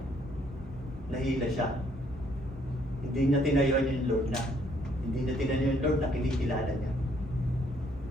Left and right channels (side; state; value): both; normal; correlation 0.67